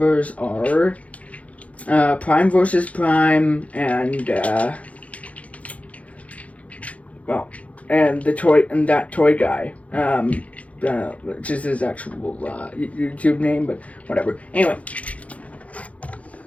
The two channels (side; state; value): right; late; 0.066 ms